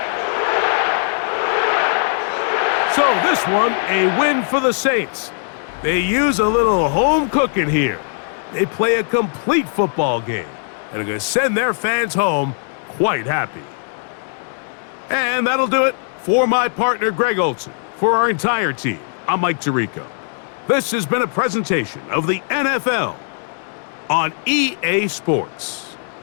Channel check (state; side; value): silent; right; 66 dB below the other